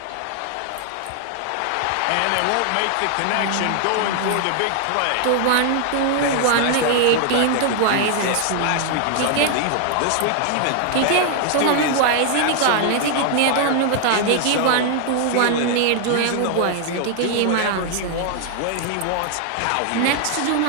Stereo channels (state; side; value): different; both; correlation 0.00